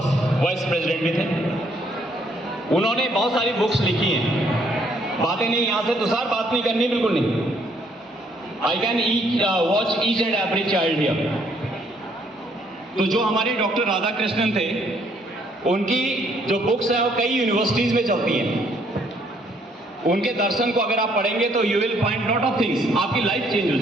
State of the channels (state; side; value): normal; both; correlation 0.67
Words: vice president भी थे। उन्होंने बहुत सारी books लिखी हैं। बातें नहीं यहाँ से तो सर बात नहीं करनी, बिल्कुल नहीं। I can watch each and every child here. तो जो हमारे डॉक्टर राधाकृष्णन थे, उनकी जो बुक्स है वो कई यूनिवर्सिटीज में चलती हैं। उनके दर्शन को अगर आप पढ़ेंगे तो you will find lot of things, आपकी लाइफ चेंज हो